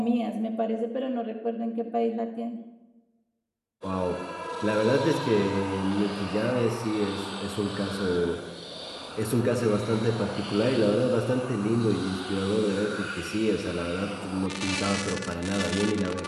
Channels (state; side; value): identical; both; correlation 1.00